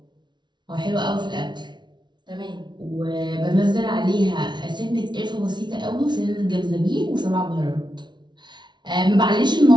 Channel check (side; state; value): left; late; 0.21 ms